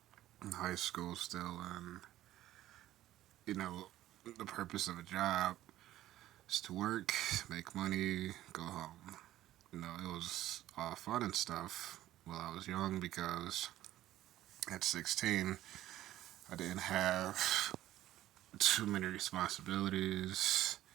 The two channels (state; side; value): quieter; left; 14.1 dB